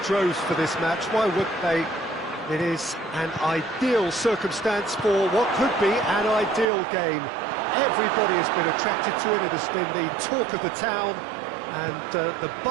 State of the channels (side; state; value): left; drops out; at 6.7 s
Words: for this match. Why wouldn't they? It is an ideal circumstance for what could be an ideal game. Everybody has been attracted to it. It has been the talk of the town and the